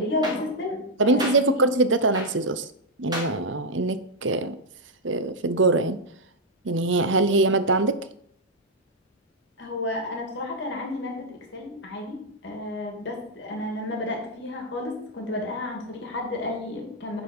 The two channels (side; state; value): both; normal; correlation -0.03